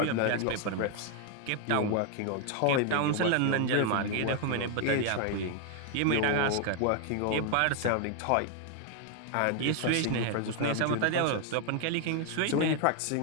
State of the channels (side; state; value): both; different; correlation 0.01